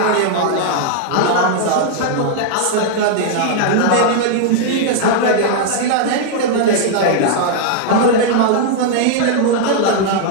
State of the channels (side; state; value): both; different; correlation 0.00